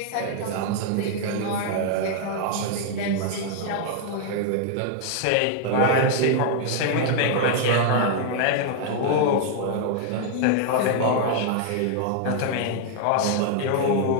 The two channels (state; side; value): different; both; correlation 0.00